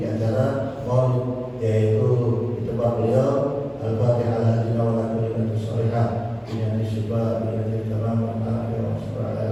acara Maulid, yaitu di tempat beliau. Al-Fatihah ala hadina wa ala kulli sholihah dengan syukur dengan kalam al-afiyah wa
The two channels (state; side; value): identical; both; correlation 1.00